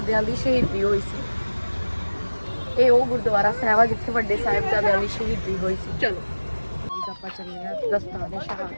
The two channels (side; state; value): both; inverted; correlation -1.00